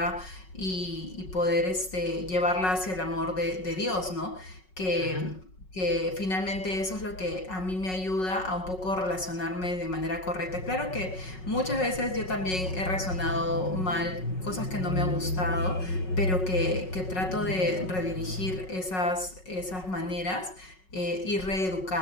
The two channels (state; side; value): late; right; 5.4 ms